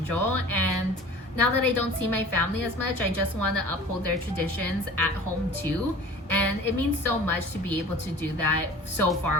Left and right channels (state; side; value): normal; both; correlation 0.42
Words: And now that I don't see my family as much, I just want to uphold their traditions at home too. And it means so much to be able to do that so